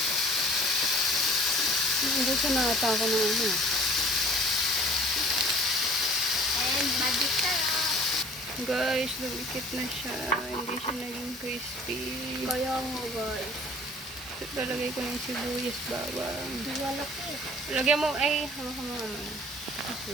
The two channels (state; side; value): normal; both; correlation 0.50